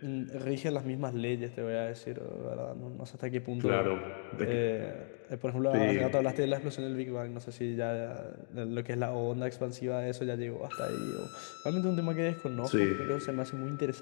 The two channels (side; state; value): right; silent; digital silence